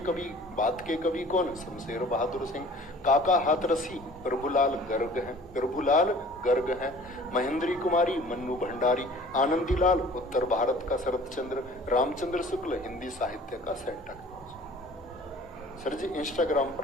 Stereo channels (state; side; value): normal; both; correlation 0.48